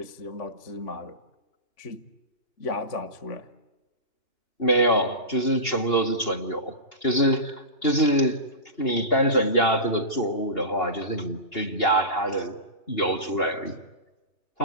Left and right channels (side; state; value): right; late; 2.8 ms